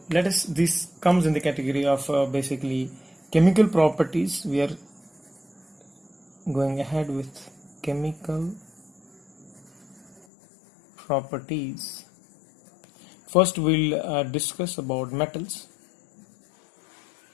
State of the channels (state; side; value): drops out; right; at 10.2 s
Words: this comes in the category of basically chemical properties. We are going ahead with chemical properties. First we'll discuss about metals.